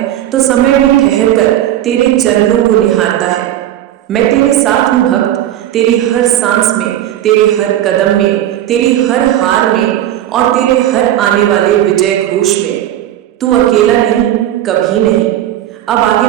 तो समय भी ठहर कर तेरे चरणों को निहारता है। मैं तेरे साथ हूँ भक्त, तेरी हर सांस में, तेरे हर कदम में, तेरी हर हार में, और तेरे हर आने वाले विजय घोष में। तू अकेला नहीं, कभी नहीं। अब आगे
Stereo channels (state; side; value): quieter; left; 12.4 dB